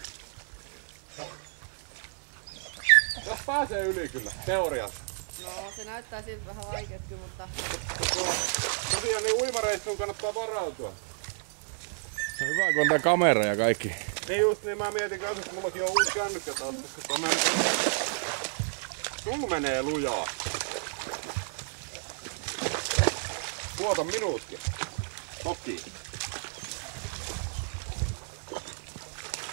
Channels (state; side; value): silent; left; 57 dB below the other